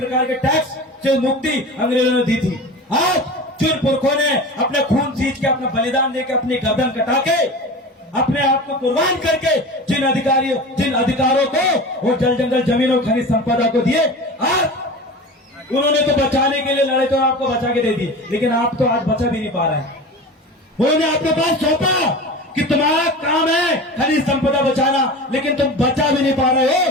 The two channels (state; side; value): normal; both; correlation 0.32